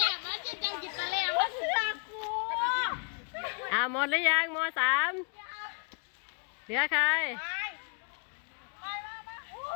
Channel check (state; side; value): quieter; right; 37.9 dB